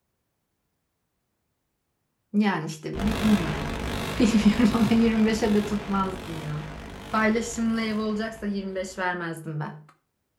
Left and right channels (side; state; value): both; identical; correlation 1.00